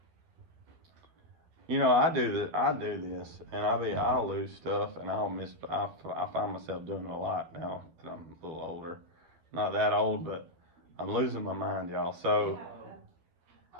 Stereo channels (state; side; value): late; left; 12 ms